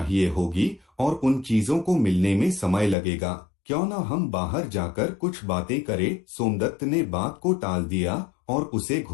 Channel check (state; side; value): drops out; right; at 3.0 s